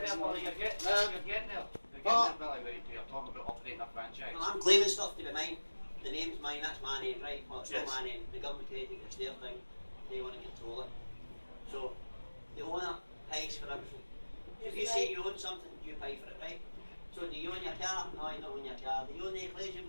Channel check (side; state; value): both; inverted; correlation -1.00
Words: Billy. You're getting there. You're getting there, Billy. You're talking about operating a franchise. Well, I'm claiming stuff to be mine. The name's mine, that's my name, right? Well, it's not my name. The government created it, it's their thing. They want to control it. So, the owner pays for everything. If you say you own something, you pay for it, right? So, do you own your car? No, you don't own your car. Do you own the equation?